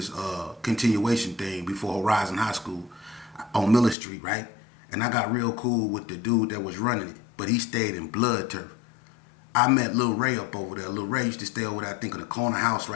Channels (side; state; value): right; drops out; at 4.0 s